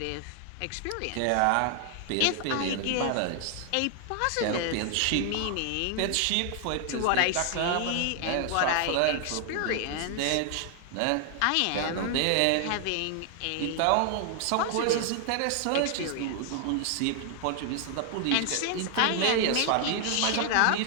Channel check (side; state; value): both; different; correlation 0.00